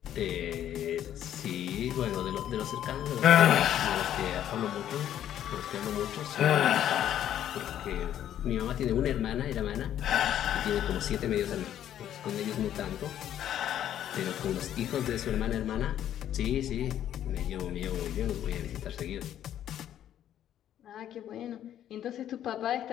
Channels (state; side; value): quieter; right; 11.0 dB